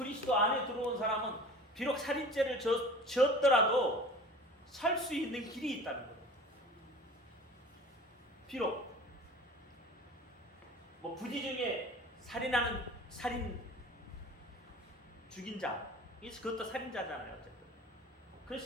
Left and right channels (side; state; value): both; normal; correlation 0.41